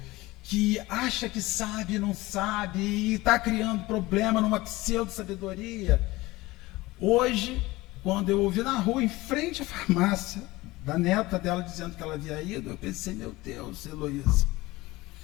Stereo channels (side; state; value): right; quieter; 19.9 dB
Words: que acha que sabe e não sabe, e está criando problema numa pseudo-sabedoria. Hoje, quando eu ouvi na rua, em frente à farmácia, da neta dela dizendo que ela havia ido, eu pensei, meu Deus, Heloísa,